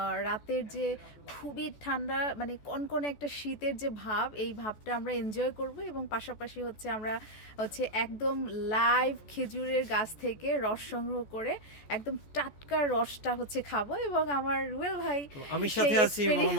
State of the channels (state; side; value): late; right; 14 ms